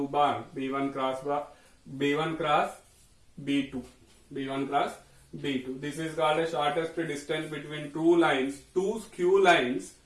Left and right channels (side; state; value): both; identical; correlation 1.00